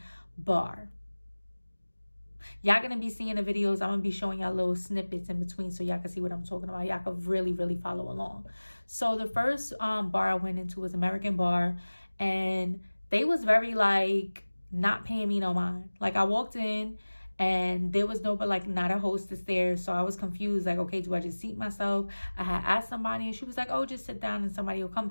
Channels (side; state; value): both; inverted; correlation -1.00